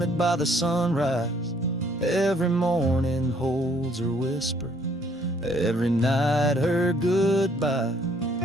by the sunrise. Every morning holds her whisper, every night her goodbye.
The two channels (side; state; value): both; normal; correlation 0.64